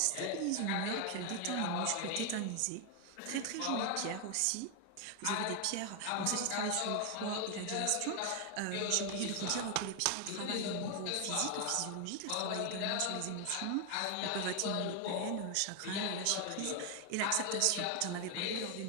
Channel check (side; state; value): both; different; correlation 0.01